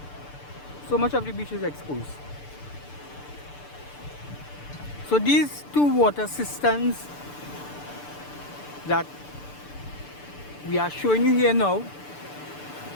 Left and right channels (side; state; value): right; late; 6.8 ms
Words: So these two water cisterns that we are showing you here now